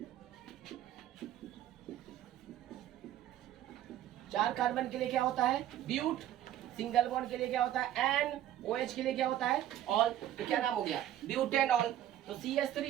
चार कार्बन के लिए क्या होता है ब्यूट, सिंगल बॉन्ड के लिए क्या होता है एन, OH के लिए क्या होता है ऑल, तो क्या नाम हो गया ब्यूटेनॉल। तो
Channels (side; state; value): left; quieter; 12.1 dB